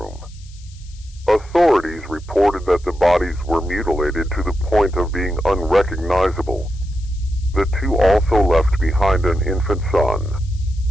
Authorities reported that the bodies were mutilated to the point of being unrecognizable. The two also left behind an infant son.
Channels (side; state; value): left; noise; hiss, 26 dB below the sound